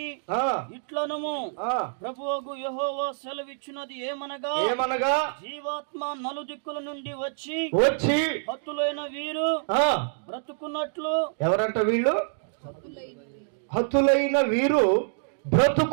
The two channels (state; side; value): silent; left; digital silence